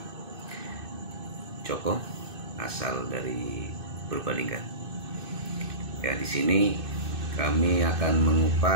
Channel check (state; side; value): late; left; 2.6 ms